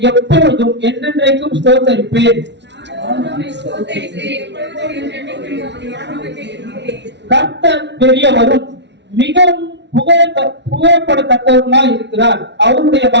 எப்பொழுதும் என்றென்றைக்கும் ஸ்தோத்தரிப்பேன். கர்த்தர் பெரியவரும் மிகவும் புகழப்படத்தக்கவருமாய் இருக்கிறார். அவருடைய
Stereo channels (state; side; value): late; left; 0.51 ms